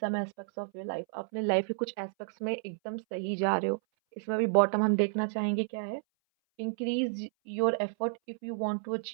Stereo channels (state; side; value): silent; left; 57 dB below the other